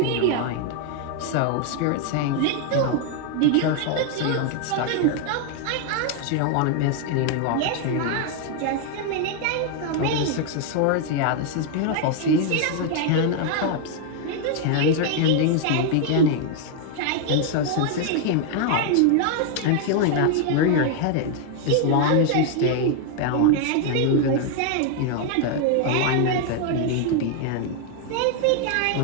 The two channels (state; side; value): different; both; correlation 0.00